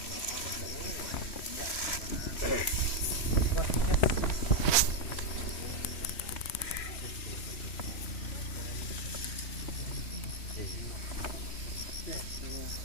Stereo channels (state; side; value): late; right; 3.1 ms